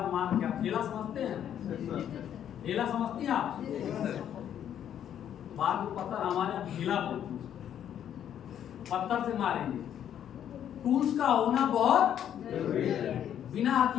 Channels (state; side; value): quieter; right; 9.9 dB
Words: मार के। ढेला समझते हैं? ढेला समझती हैं आप? बाद में पत्थर हमारे ढेला बोलते हैं, पत्थर से मारेंगे। टूल्स का होना बहुत जरूरी है। बिना